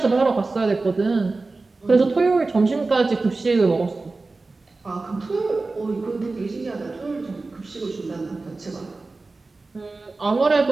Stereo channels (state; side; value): quieter; left; 3.6 dB